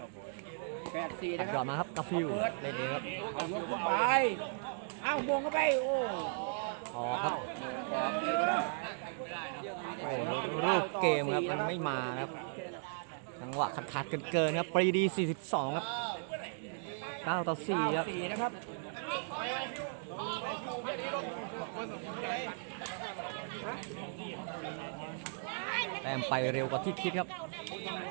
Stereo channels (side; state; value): left; silent; digital silence